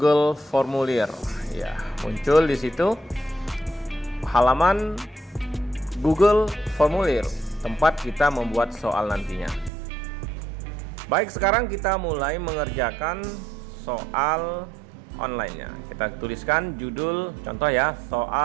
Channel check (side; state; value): left; drops out; at 9.7 s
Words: Formulir. Ya, muncul di situ halaman Google Formulir, tempat kita membuat soal nantinya. Baik, sekarang kita mulai mengerjakan soal online-nya. Kita tuliskan judul, contoh ya,